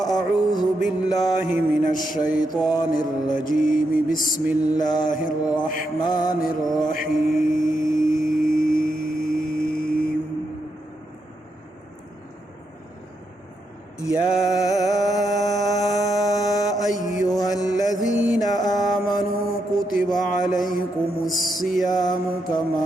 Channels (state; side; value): normal; both; correlation 0.82